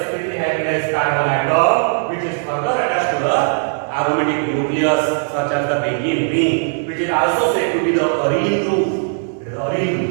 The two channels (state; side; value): silent; left; digital silence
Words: sp3 hybridized carbon atom, which is further attached to the aromatic nucleus, such as the benzene ring, which is also said to be the arene group. It is the arene